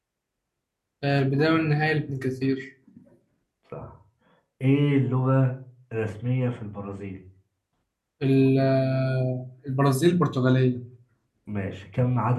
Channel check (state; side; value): identical; both; correlation 1.00